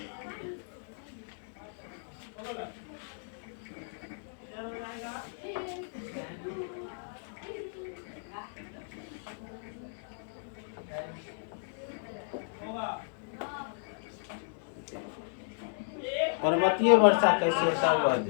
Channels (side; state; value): right; silent; 55 dB below the other